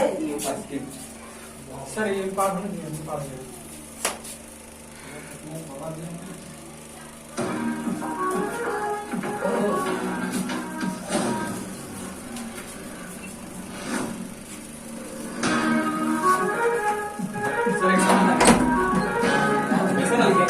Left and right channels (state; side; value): identical; both; correlation 1.00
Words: सर? ये पार होने दिया, पार हो गया। सर एक सामने ऐसा ना लिखा,